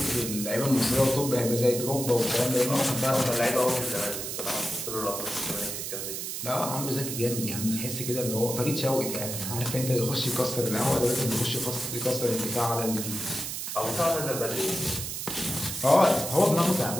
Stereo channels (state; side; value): noise; right; hiss, 5 dB below the sound